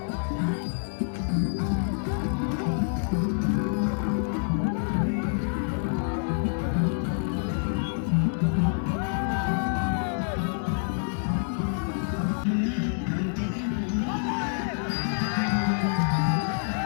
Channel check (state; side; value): silent; right; digital silence